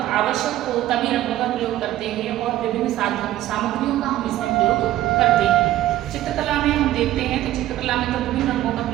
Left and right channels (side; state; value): left; quieter; 14.2 dB